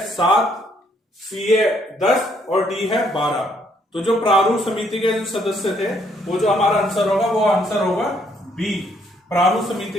7, सी है 10 और डी है 12। तो जो प्रारूप समिति के जो सदस्य थे वो जो हमारा आंसर होगा वो आंसर होगा बी, प्रारूप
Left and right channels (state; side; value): normal; both; correlation 0.69